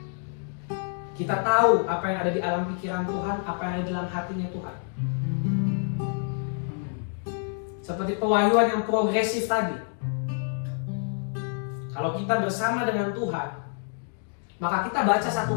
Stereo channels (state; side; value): silent; right; 56 dB below the other